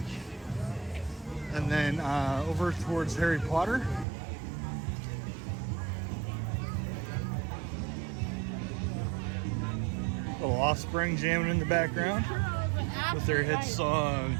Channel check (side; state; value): left; drops out; at 4.0 s